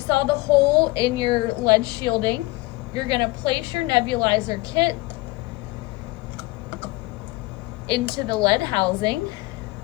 the hole in your lead shielding, you're gonna place your nebulizer kit into the lead housing.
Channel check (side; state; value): right; quieter; 21.6 dB